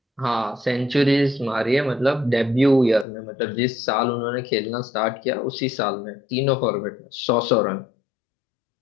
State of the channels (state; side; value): drops out; right; at 3.1 s